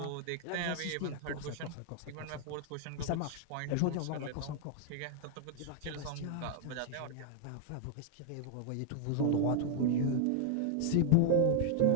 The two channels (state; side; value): different; both; correlation -0.01